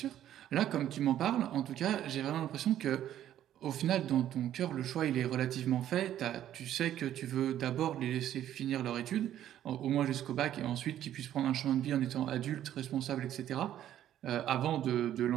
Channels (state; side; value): quieter; left; 11.6 dB